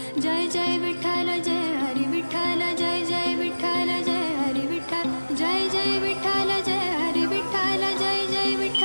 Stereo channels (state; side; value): inverted; both; correlation -1.00